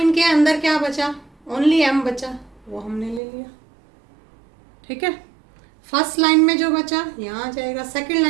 के अंदर क्या बचा? ओनली m बचा, वो हमने ले लिया। ठीक है, फर्स्ट लाइन में जो बचा यहाँ आ जाएगा, सेकेंड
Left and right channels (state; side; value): drops out; left; at 3.2 s